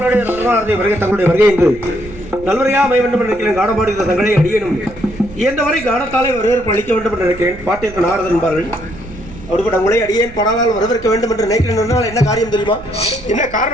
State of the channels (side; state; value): right; noise; rumble, 17 dB below the sound